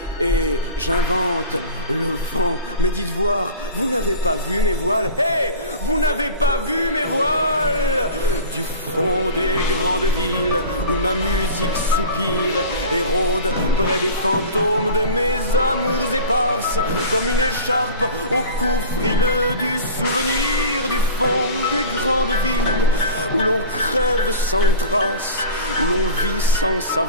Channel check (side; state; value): both; inverted; correlation -0.37